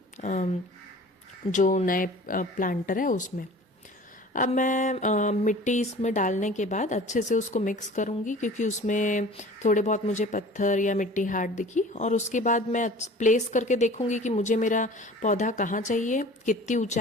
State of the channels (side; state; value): both; normal; correlation 0.44